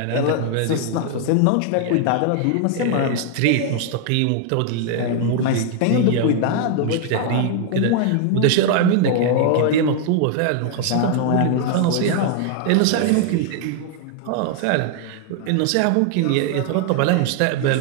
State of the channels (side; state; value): both; different; correlation 0.00